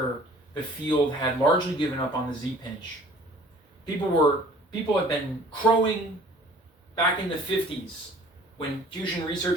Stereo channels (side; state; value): both; normal; correlation 0.51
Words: the field had largely given up on the Z-pinch. People had been crowing back in the 50s when fusion